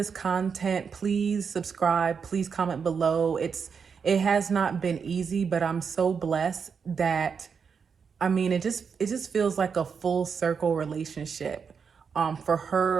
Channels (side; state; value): left; quieter; 6.2 dB